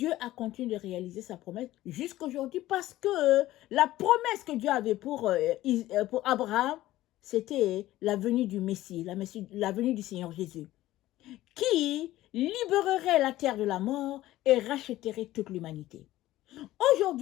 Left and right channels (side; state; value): right; quieter; 15.6 dB